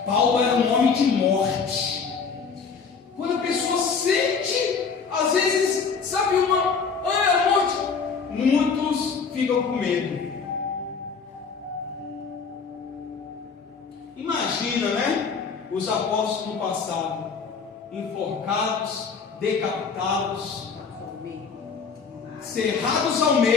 Paulo era um homem de morte. Quando a pessoa sente, às vezes, sabe, a morte, muitos ficam com medo. Imagina, né? Os apóstolos no passado, enforcados, decapitados, cerrados ao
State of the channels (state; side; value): quieter; right; 5.5 dB